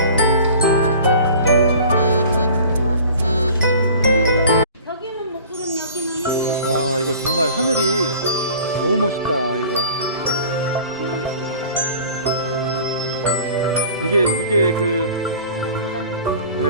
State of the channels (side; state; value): both; inverted; correlation -0.44